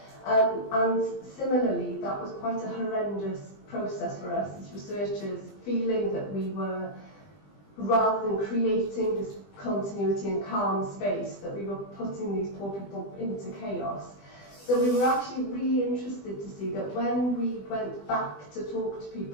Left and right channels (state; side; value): late; right; 20 ms